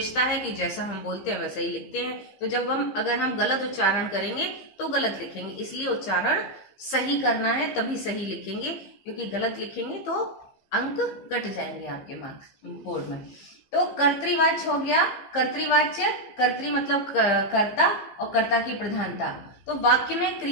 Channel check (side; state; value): right; late; 15 ms